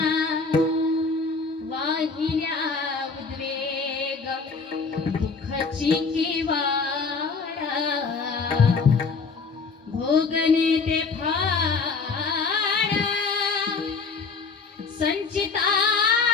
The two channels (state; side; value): quieter; right; 4.6 dB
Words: दुःखाची किवाडा भोगणे ते फाड